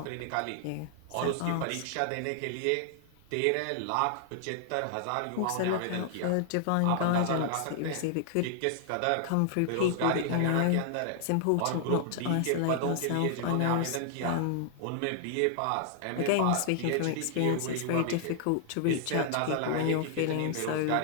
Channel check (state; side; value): different; both; correlation 0.00